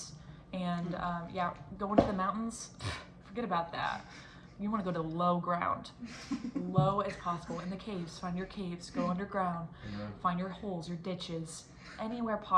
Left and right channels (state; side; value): identical; both; correlation 1.00